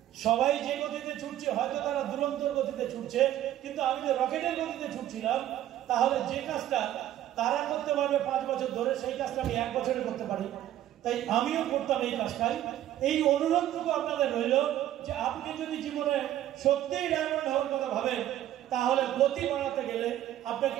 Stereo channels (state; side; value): quieter; left; 12.6 dB